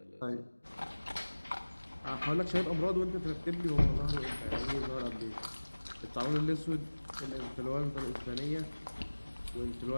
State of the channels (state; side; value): inverted; both; correlation -1.00